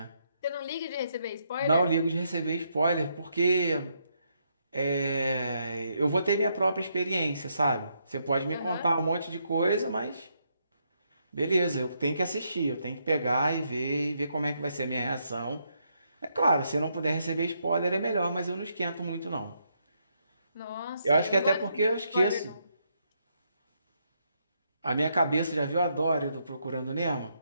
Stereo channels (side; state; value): both; inverted; correlation -0.77